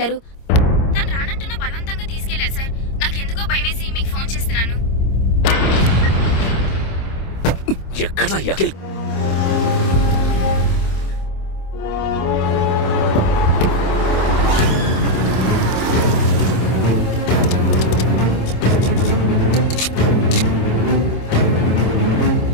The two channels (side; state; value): right; late; 26 ms